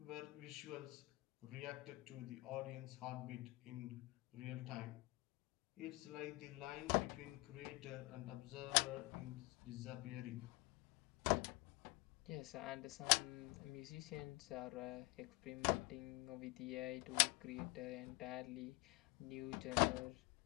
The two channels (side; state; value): right; quieter; 23.2 dB